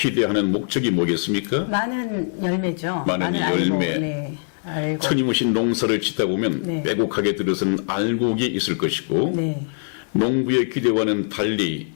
목적이 뭐겠습니까? 많은 열매죠. 많은 열매. 네. 알곡. 끊임없이 농사를 짓다 보면 네. 빼곡하게 들어선 알곡이 있을 것이고 네. 농부의 기대와는 달리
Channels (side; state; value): right; silent; digital silence